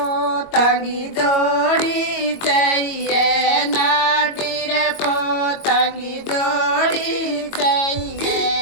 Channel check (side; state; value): right; late; 22 ms